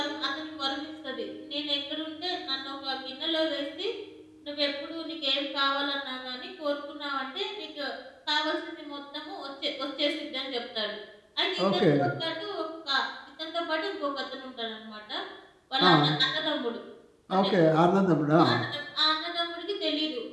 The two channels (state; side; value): identical; both; correlation 1.00